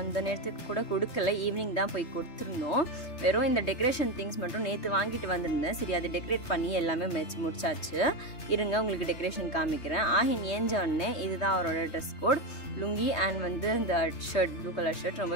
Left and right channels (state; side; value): late; right; 3.2 ms